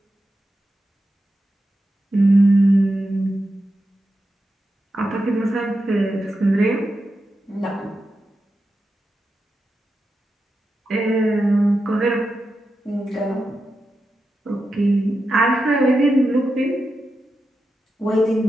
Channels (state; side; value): normal; both; correlation 0.89